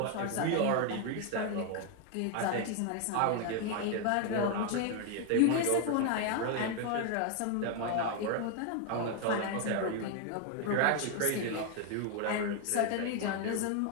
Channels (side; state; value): both; different; correlation 0.01